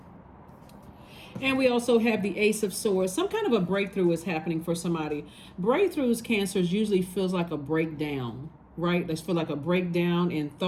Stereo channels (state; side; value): identical; both; correlation 1.00